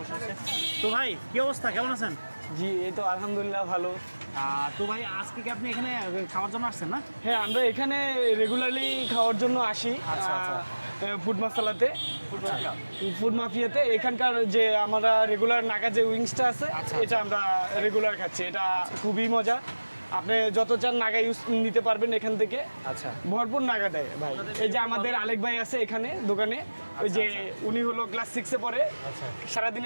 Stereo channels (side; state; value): both; inverted; correlation -1.00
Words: আছে। তো ভাই কি অবস্থা, কেমন আছেন? জি এই তো আলহামদুলিল্লাহ ভালো। তো ভাই আজকে কি আপনি এখানে খাওয়ার জন্য আসছেন না? হ্যাঁ আমরা এখানে রেগুলারলি খাওয়ার জন্য আসি আচ্ছা, আচ্ছা। ফুড মাসালাতে, ফুড মাফিয়াতে। এখানকার যে আমরা রেগুলার নাগা যে উইংসটা আছে আচ্ছা, এটা আমরা রেগুলার খাচ্ছি, এটা খুবই মজা। আপনি যত চান নাগা ইউজ নিতে পারবেন এখান থেকে, আচ্ছা ভরপুর নাগা দেয় ভাই। এই যে আমাদের আলেক ভাই আছে এখানে দোকানে, ওই যে উনি হলো ক্লাস 6-এ পড়ে, আচ্ছা।